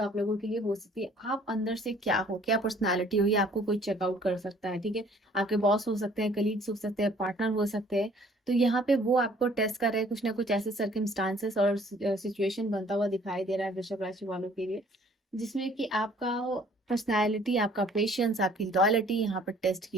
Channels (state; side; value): normal; both; correlation 0.57